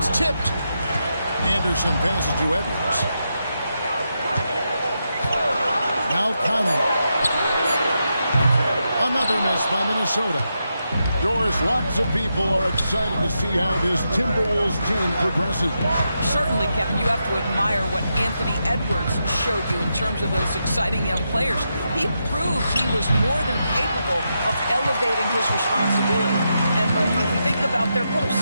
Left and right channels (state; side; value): inverted; both; correlation -0.85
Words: tipped. Anderson passes to Edwards. Now Conley. Another miss by Minnesota. Doris, lots of people are excited to see how this Timberwolves team progresses. Certainly, Kevin, you have to admire what Anthony Edwards showed you in terms of those exciting young players. He proved he was more than capable of elevating his responsibility. And when you think about their